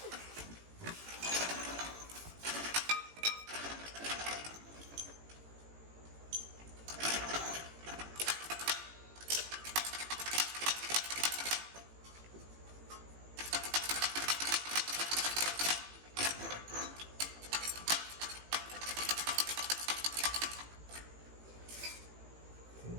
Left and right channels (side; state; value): left; late; 18 ms